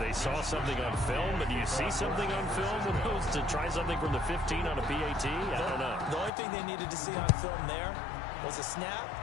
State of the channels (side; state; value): right; drops out; at 6.3 s